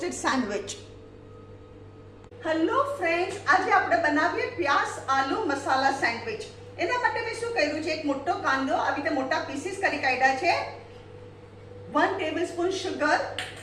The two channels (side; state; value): both; identical; correlation 1.00